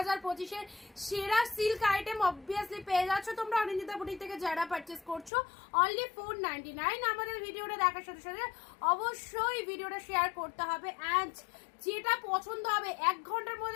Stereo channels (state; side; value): drops out; right; at 5.3 s